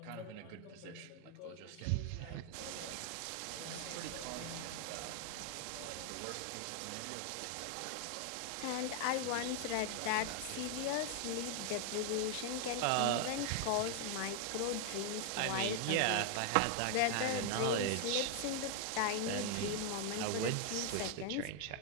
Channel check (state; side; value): different; both; correlation 0.00